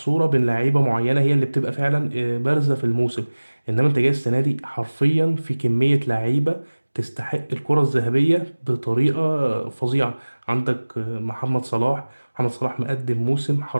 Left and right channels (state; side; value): inverted; both; correlation -1.00